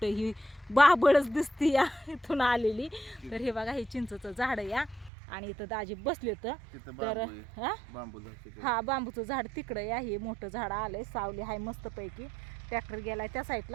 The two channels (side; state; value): left; drops out; at 5.1 s